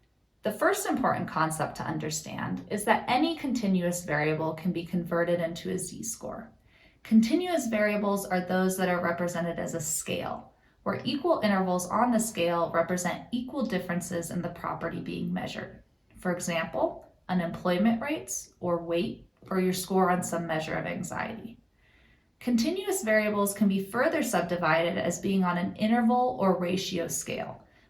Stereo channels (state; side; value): identical; both; correlation 1.00